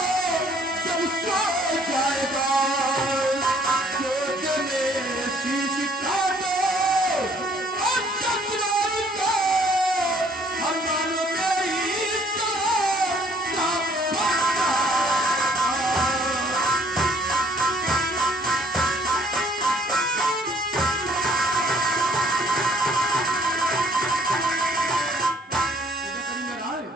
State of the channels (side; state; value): both; normal; correlation 0.62